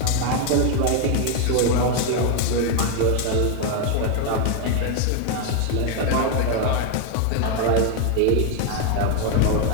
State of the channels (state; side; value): different; both; correlation 0.01